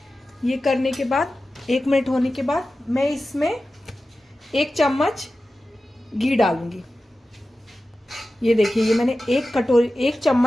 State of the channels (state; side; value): normal; both; correlation 0.94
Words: ये करने के बाद 1 मिनट होने के बाद मैं इसमें 1 चम्मच घी डालूंगी। ये देखिए, ये मैंने 1